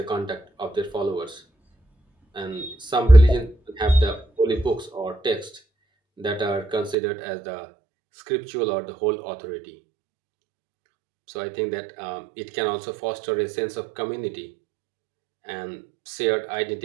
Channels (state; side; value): drops out; left; at 7.0 s